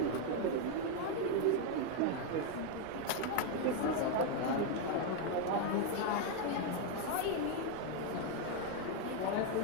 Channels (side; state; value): both; different; correlation 0.01